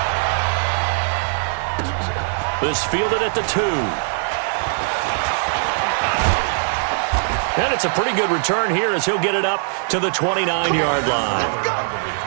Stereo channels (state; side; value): silent; left; digital silence